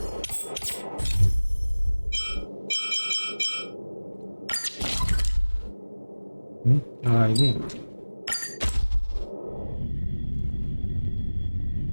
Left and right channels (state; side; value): inverted; both; correlation -1.00